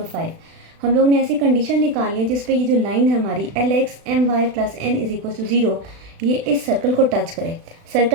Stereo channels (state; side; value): late; left; 36 ms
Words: 5। हम लोग ने ऐसी कंडीशन निकालनी है जिस पे ये जो लाइन है हमारी LX/My + N = 0 ये इस सर्कल को टच करे।